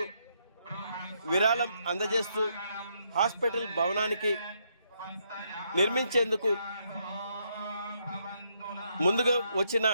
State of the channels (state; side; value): inverted; both; correlation -0.75